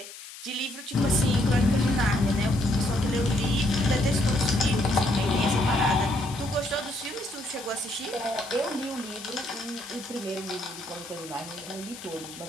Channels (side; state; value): left; noise; hiss, 14 dB below the sound